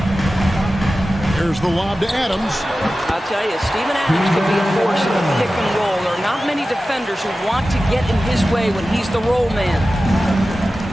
Here's the lob to Adams. I'll tell you, Steven Adams could be a force in the pick and roll. There are not many defenders who want to get in his way when he's the roll man.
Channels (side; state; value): both; normal; correlation 0.95